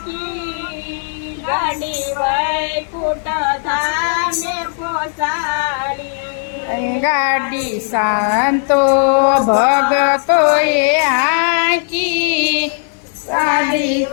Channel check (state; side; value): silent; right; digital silence